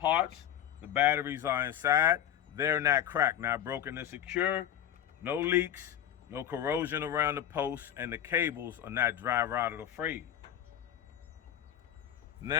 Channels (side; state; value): right; quieter; 10.5 dB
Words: The batteries are inside. They're not cracked, not broken and secure, no leaks, no corrosion around the posts, and the cables are not dry rotted or frayed.